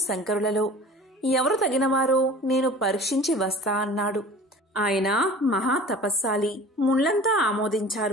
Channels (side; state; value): both; normal; correlation 0.42